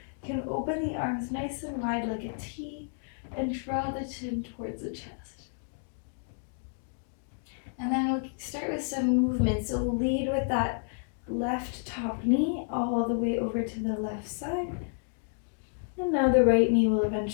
You can open the arms nice and wide like a T and draw the chin towards the chest. And then we'll start with some movement. So we'll lead with that left top knee all the way over to the left side. And now the right knee will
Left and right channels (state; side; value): silent; right; digital silence